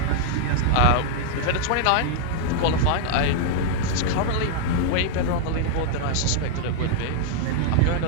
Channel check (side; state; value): both; different; correlation -0.01